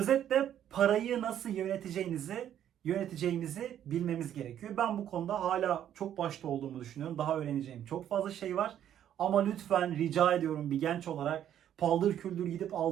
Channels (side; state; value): left; quieter; 10.5 dB